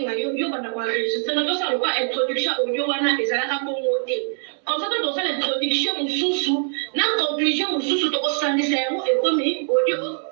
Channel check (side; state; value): left; silent; 64 dB below the other